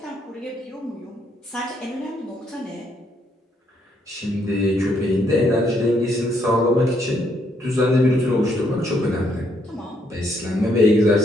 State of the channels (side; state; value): both; normal; correlation 0.72